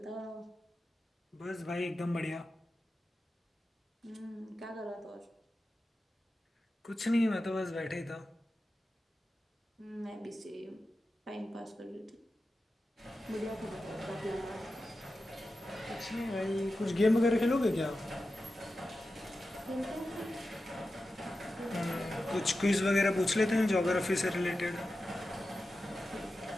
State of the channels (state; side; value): normal; both; correlation 0.92